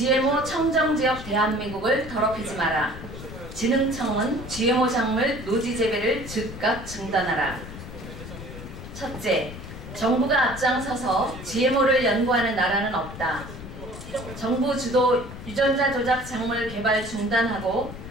청정지역 대한민국을 더럽히지 마라. 진흥청은 GMO 작물 노지 재배를 즉각 중단하라. 첫째, 정부가 앞장서서 GMO를 연구하는 나라는 없다. 정부 주도 유전자 조작 작물 개발 중단하고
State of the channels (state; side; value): noise; left; rumble, 12 dB below the sound